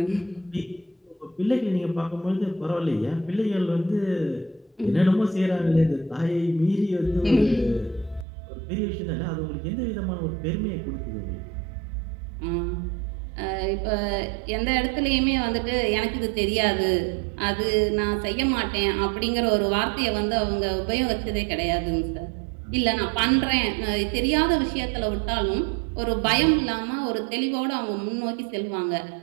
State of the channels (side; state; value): left; drops out; at 8.2 s